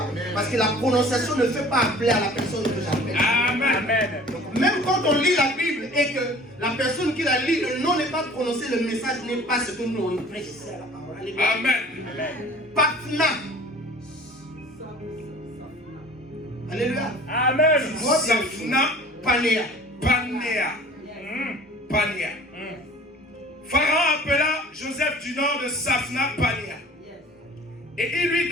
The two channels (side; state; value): both; normal; correlation 0.47